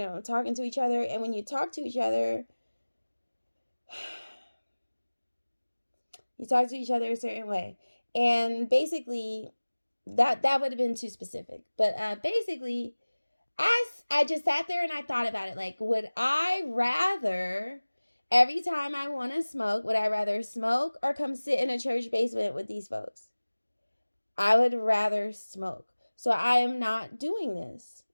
talking to each other. And when you talk to each other, you talk to each other a certain way. And basically, that would have been too specific. But basically, I just sat there and I thought about it. Like, would I rather, every time I want to smoke, would I rather smoke or come sit in a church basement with these folks? I would rather smoke. So I am not doing this.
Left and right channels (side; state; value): both; inverted; correlation -1.00